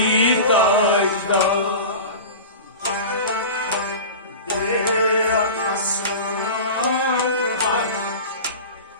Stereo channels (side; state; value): both; inverted; correlation -0.32